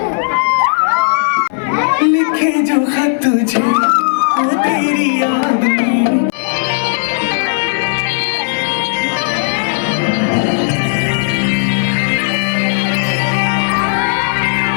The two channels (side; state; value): right; silent; digital silence